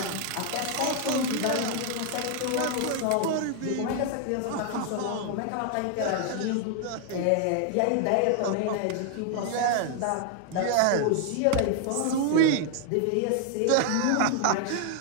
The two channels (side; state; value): both; different; correlation 0.00